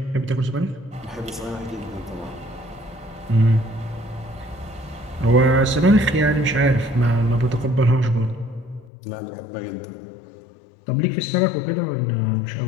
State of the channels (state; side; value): drops out; right; at 8.9 s